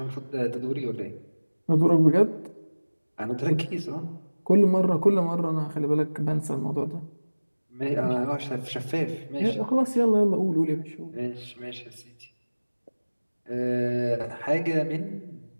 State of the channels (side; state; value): both; inverted; correlation -1.00